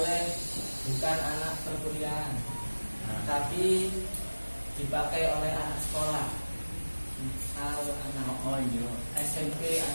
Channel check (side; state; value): both; inverted; correlation -1.00